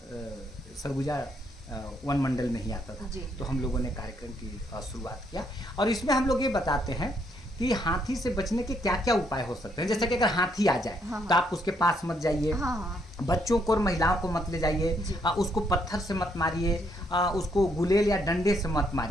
सरगुजा वन मंडल में ही आता था। तो हम लोगों ने कार्यक्रम की शुरुआत किया, और इसमें हम लोग ये बताते हैं कि हाथी से बचने के क्या क्या उपाय हो सकते हैं। जैसे कि अगर हाथी आ जाए तो आप उसके पास मत जाइए, बच्चों को और महिलाओं को मत ले जाइए, उसको पत्थर से मत मारिए, उसको गुलेल या डंडे से मत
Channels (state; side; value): normal; both; correlation 0.72